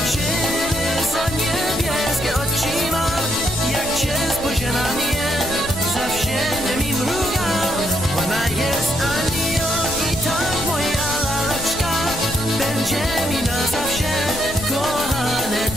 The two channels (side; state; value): left; noise; rumble, 11 dB below the sound